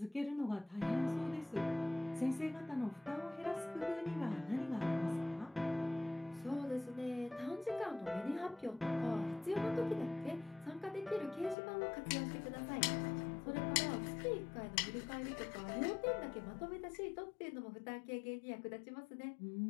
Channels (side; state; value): right; drops out; at 11.6 s